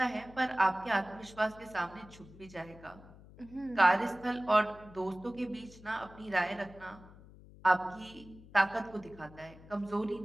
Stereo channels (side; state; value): left; noise; hum, 20 dB below the sound